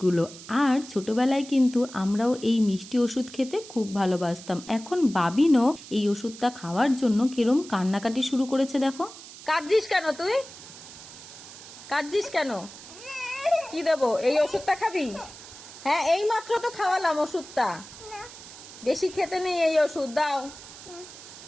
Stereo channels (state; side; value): noise; right; hiss, 16 dB below the sound